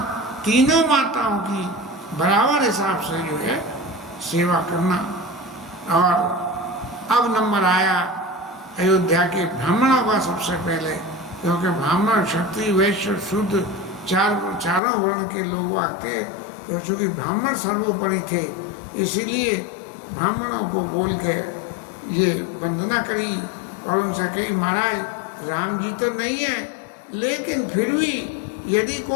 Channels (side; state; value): right; drops out; at 14.8 s